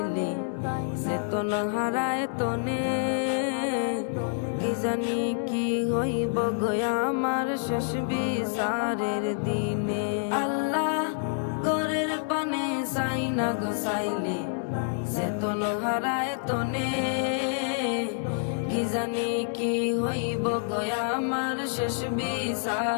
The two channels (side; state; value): right; silent; 57 dB below the other